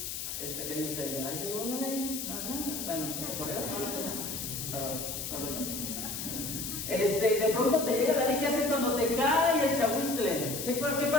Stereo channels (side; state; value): left; noise; hiss, 5 dB below the sound